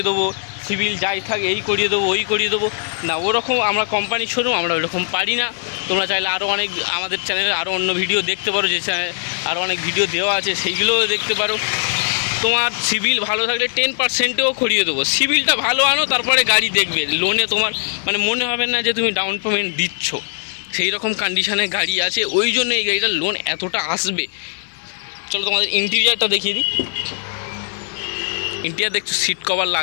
দেবো, সিভিল যাই থাকে এই করিয়ে দেবো ওই করিয়ে দেবো, না ওরকম আমরা কোম্পানি শোরুম, আমরা ওরকম পারি না। তোমরা চাইলে আরও অনেক আমাদের চ্যানেলে আরও অন্য ভিডিও দেখতে পারো, যে চ্যানেলে আরও অনেক ভিডিও দেওয়া আছে সেইগুলোও দেখতে পারো। তোমার সিভিল ভালো থাকলে 10%ও করিয়ে দেবো। সিভিলটা ভালো আনো, তারপরে গাড়ি দেখবে, লোনে তোমার মানে মনে হবে না যে তুমি ডাউন পেমেন্ট দিচ্ছ, সেই রকম কন্ডিশানে গাড়ি আছে, ওই জন্য এই গাড়িটার লোন এতটা আসবে। চলো তোমাদের ইন্টেরিয়ারটা দেখিয়ে দিই। ইন্টেরিয়ার দেখছো, সিট কভার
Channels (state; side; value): silent; right; 66 dB below the other